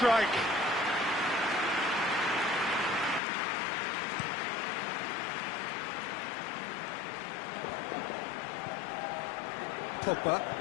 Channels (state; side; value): drops out; right; at 3.2 s